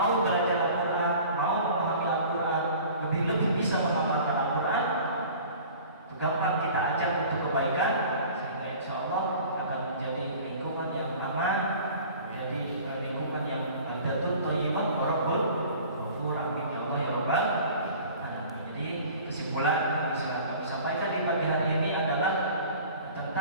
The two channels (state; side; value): inverted; both; correlation -0.44